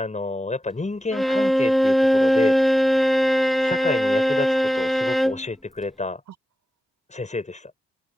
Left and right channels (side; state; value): both; normal; correlation 0.93